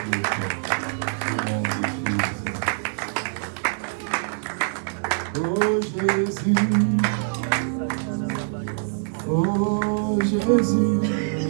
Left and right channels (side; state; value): left; silent; digital silence